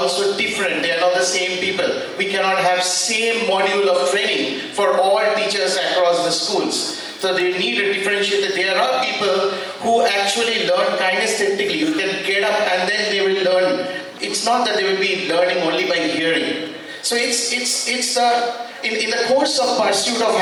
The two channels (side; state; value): both; identical; correlation 1.00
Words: different. They are not the same people. We cannot have same module of training for all teachers across the schools. So they need a differentiated. There are people who actually learn kinesthetically. You can get up and then they will learn. It's not that they will be learning only by hearing. So it's in the course of pursuit of